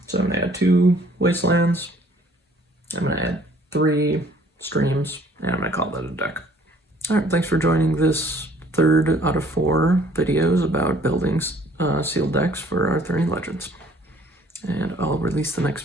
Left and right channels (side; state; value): both; normal; correlation 0.58